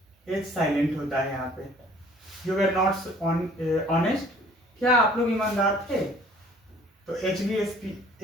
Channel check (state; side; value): normal; both; correlation 0.54